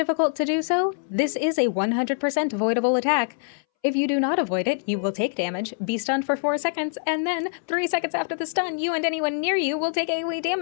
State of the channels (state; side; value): silent; right; 62 dB below the other